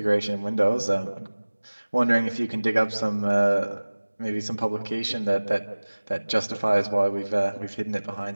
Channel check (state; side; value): inverted; both; correlation -1.00